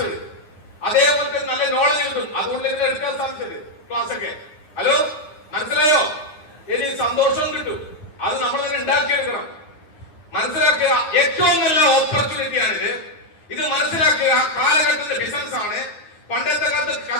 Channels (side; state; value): right; late; 9.8 ms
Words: അതേപോലെ നല്ല നോളജ് കിട്ടും, അതുകൊണ്ട് തന്നെ എടുക്കാൻ സാധിച്ചത് ക്ലാസ് ഒക്കെ. ഹലോ, മനസ്സിലായോ? ഇനി സന്തോഷവും കിട്ടും, അത് നമ്മൾ തന്നെ ഉണ്ടാക്കിയെടുക്കണം. മനസ്സിലാക്കുക, ഏറ്റവും നല്ല ഓപ്പർച്യൂണിറ്റിയാണിത്. ഇത് മനസ്സിലാക്കുക. കാലഘട്ടത്തിന്റെ ബിസിനസ് ആണ്. പണ്ടത്തെ കാലത്ത്